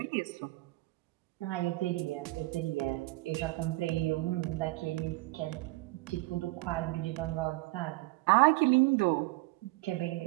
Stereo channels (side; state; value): left; quieter; 21.1 dB